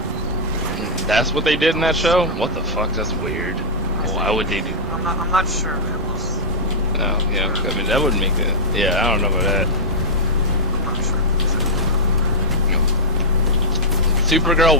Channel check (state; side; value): normal; both; correlation -0.07